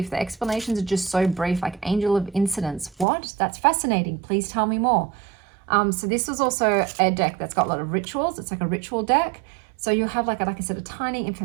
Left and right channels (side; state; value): left; drops out; at 3.1 s